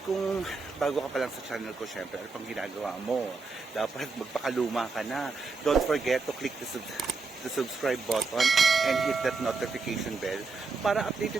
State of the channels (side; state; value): left; quieter; 4.2 dB